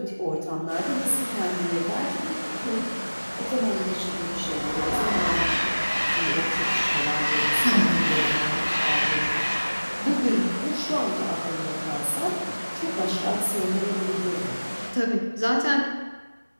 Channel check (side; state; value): both; inverted; correlation -1.00